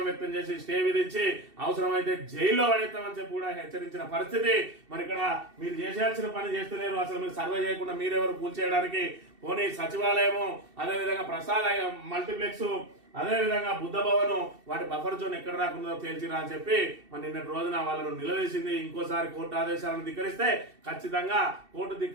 వ్యక్తం చేసి స్టే విధించి అవసరమైతే జైల్లో పడేస్తామని చెప్పి కూడా హెచ్చరించిన పరిస్థితి. మరి ఇక్కడ మీరు చేసేయాల్సిన పని చేస్తలేరు. అసలు మీరు సర్వే చేయకుండా మీరెవరు కూల్చేయడానికి? పోనీ సచివాలయము, అదేవిధంగా ప్రసాద్ మల్టీప్లెక్స్, అదేవిధంగా బుద్ధ భవన్ వాటి బఫర్ జోన్ ఎక్కడ రాకుండా తేల్చిరా అని చెప్పి మరి నిన్నటి రోజున వాళ్ళను నిలదీసింది. ఇంకోసారి కోర్టు ఆదేశాలను ధిక్కరిస్తే ఖచ్చితంగా కోర్టు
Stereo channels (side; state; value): left; late; 2.7 ms